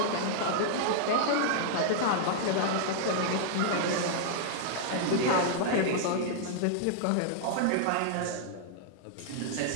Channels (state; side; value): different; both; correlation -0.01